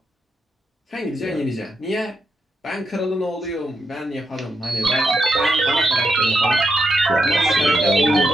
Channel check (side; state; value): both; normal; correlation 0.83